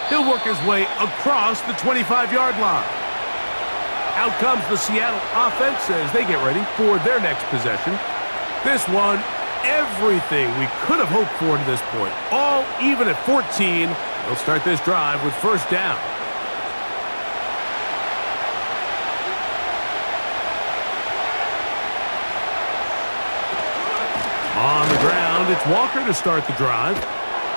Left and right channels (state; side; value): inverted; both; correlation -1.00